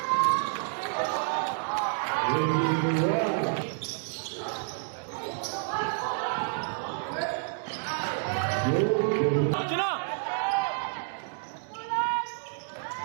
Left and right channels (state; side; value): silent; left; 58 dB below the other